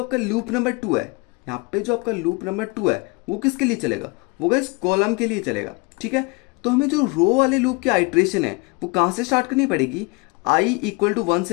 आपका लूप नंबर 2 है, यहाँ पे जो आपका लूप नंबर 2 है वो किसके लिए चलेगा, वो गाइस कॉलम के लिए चलेगा। ठीक है, तो हमें जो रो वाले लूप की आइट्रेशन है वो कहाँ से स्टार्ट करनी पड़ेगी, i इक्वल टू 1 से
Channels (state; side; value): quieter; right; 27.6 dB